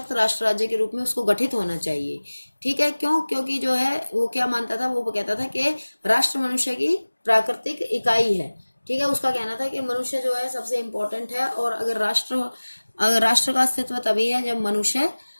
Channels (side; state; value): both; inverted; correlation -1.00